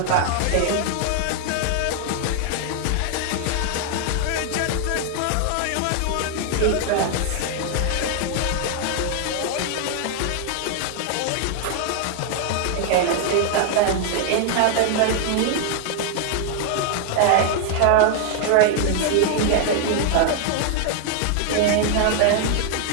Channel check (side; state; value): both; different; correlation 0.00